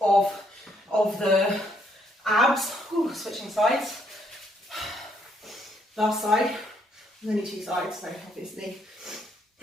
of the abs. Ooh, switching sides. Last side. There's only 2 sides, so obviously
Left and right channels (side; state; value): both; normal; correlation 0.70